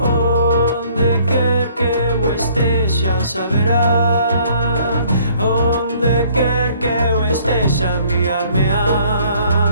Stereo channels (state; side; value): inverted; both; correlation -0.60